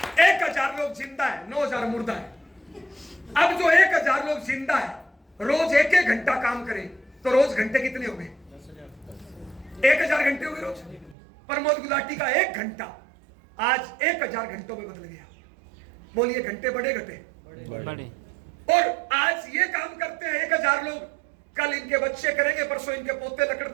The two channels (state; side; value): drops out; left; at 11.2 s